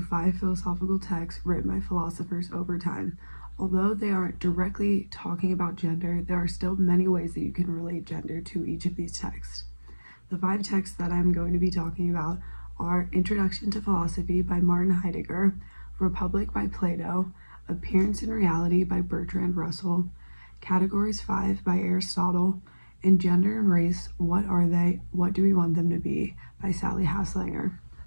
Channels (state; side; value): inverted; both; correlation -1.00